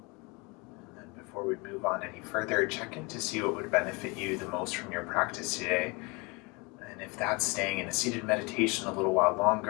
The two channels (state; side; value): quieter; right; 28.2 dB